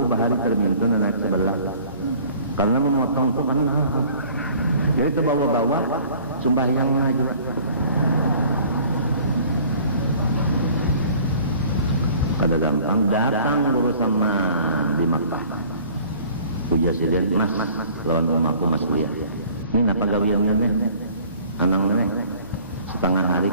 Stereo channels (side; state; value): both; inverted; correlation -0.51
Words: bahari termintin naik sebelah. Karena memotong itu kan jadi itu bawa-bawa sembahyangnya juga. Kada gampang datang dulu sama di Makkah. Presiden Mas lawan rumahku Mas dia. Ini apa gawian ini? Anaknya setengah hari